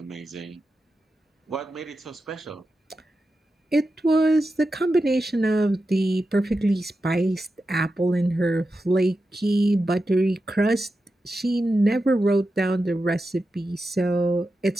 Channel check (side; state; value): both; normal; correlation 0.90